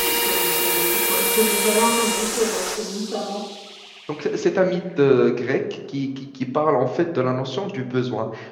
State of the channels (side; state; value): both; identical; correlation 1.00